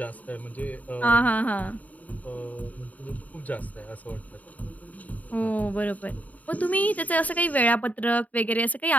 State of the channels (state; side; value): late; right; 0.073 ms